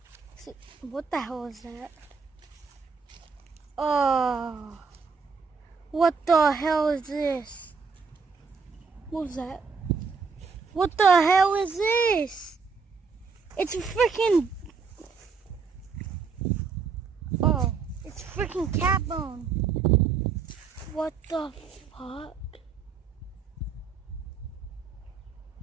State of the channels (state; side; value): quieter; left; 5.3 dB